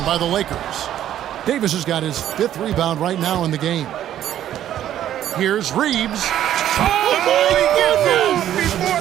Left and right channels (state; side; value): quieter; left; 11.5 dB